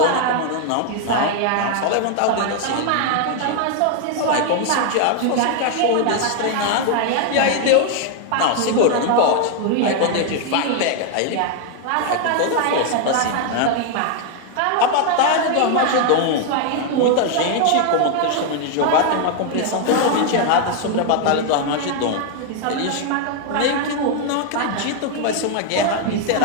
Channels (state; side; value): different; both; correlation 0.00